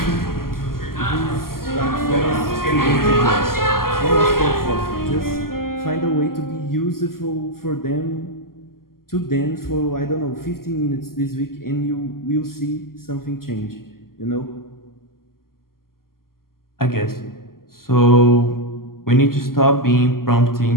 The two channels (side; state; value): right; late; 0.92 ms